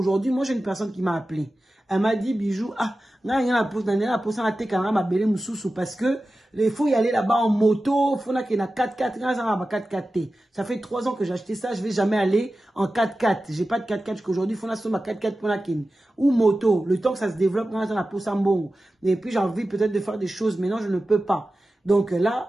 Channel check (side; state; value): both; normal; correlation 0.94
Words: moi j'ai une personne qui m'a appelé. Elle m'a dit, Bijou, parce que il faut y aller là-bas en moto, il faut qu'il y ait 4x4, ça fait 3 ans que j'ai acheté ça, je ne vais jamais aller en 4x4. Je n'ai pas de 4x4 jusqu'aujourd'hui, il faut que 4x4 ou moto, le temps que ça se développe, et puis j'ai envie peut-être de faire des choses, mais non, je ne peux pas. Donc